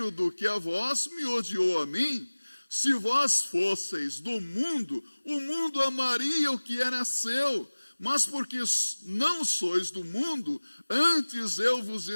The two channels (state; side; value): inverted; both; correlation -1.00